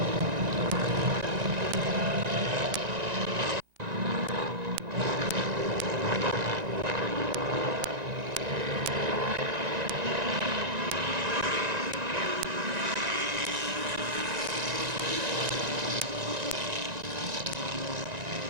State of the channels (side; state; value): left; late; 1.9 ms